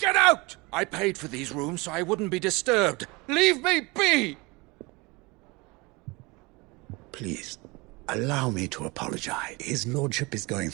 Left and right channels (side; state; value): left; quieter; 25.3 dB